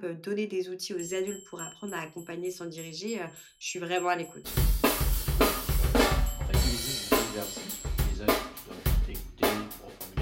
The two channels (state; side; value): identical; both; correlation 1.00